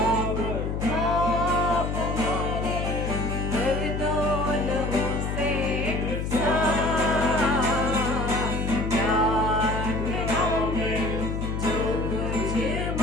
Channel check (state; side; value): noise; left; hum, 2 dB below the sound